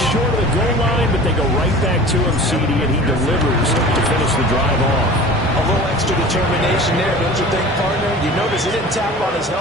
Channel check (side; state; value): both; normal; correlation 0.40